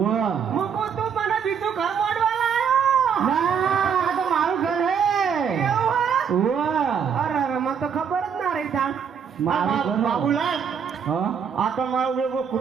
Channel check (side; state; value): left; quieter; 7.1 dB